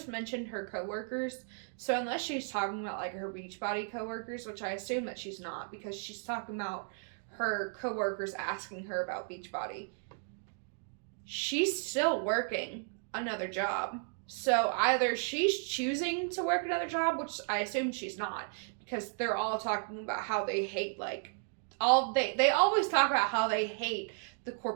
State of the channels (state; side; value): silent; left; 55 dB below the other